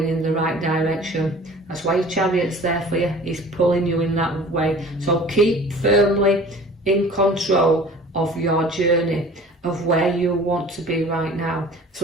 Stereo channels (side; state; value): both; normal; correlation 0.45